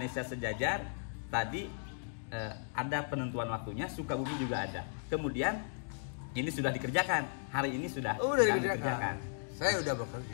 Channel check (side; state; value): right; silent; digital silence